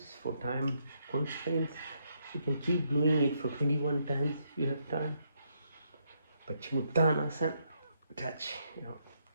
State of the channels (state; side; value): inverted; both; correlation -0.76